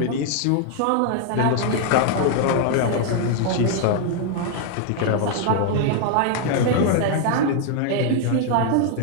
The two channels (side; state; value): both; different; correlation 0.00